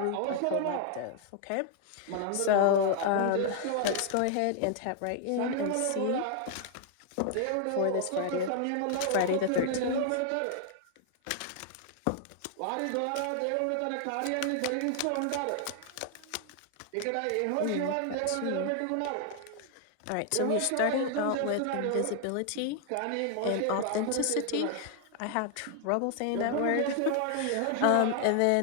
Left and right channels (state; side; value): different; both; correlation 0.00